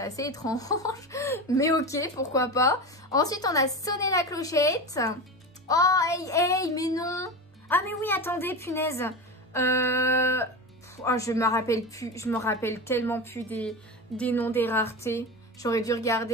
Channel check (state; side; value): normal; both; correlation 0.24